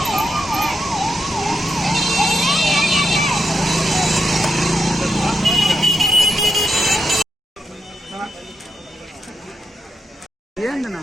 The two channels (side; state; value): both; normal; correlation 0.85